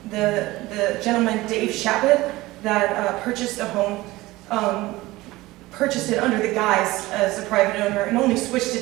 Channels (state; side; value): quieter; left; 19.2 dB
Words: The gentleman, Dave Shabbat, that purchased the home, purchased it under the guise as a private owner and only switched